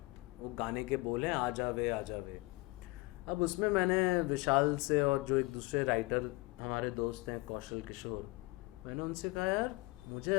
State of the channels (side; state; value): right; quieter; 23.8 dB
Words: वो गाने के बोल हैं आ जावे आ जावे. अब उसमें मैंने विशाल से और जो एक दूसरे राइटर हमारे दोस्त हैं कौशल किशोर, मैंने उनसे कहा यार मुझे